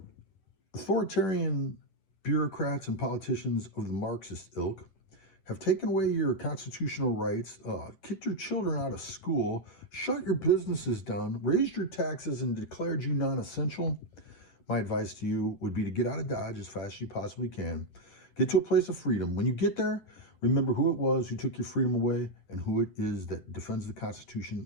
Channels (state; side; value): late; right; 10 ms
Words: authoritarian bureaucrats and politicians of the Marxist ilk have taken away your constitutional rights, kicked your children out of school, shut your businesses down, raised your taxes, and declared you non-essential, my advice to you would be to get out of Dodge as fast as you possibly can. Get to a place of freedom. When you get there, remember who it was who took your freedom away and who it is that defends the